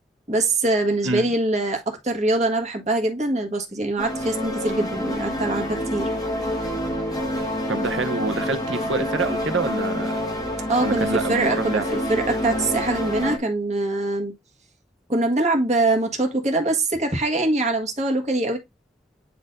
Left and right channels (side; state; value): both; normal; correlation 0.47